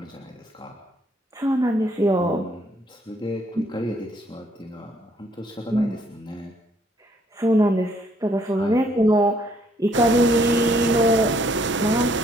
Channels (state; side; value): normal; both; correlation 0.66